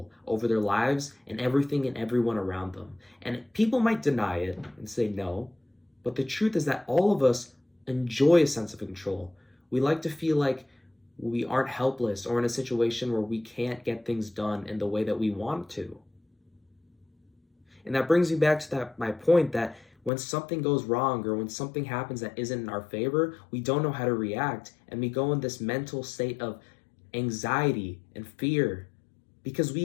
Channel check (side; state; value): right; drops out; at 20.1 s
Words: over their lives and everything and everyone around them. And people might deny it and say no, but the truth is that all of us enjoy a sense of control. We like to feel like we aren't helpless or in a situation where we can't get things done in the way that we want to. And that brings me back to my point that when something goes wrong or when something happens that isn't in our favor, we don't know how to react and we go in this mental state of anxiety and fear because we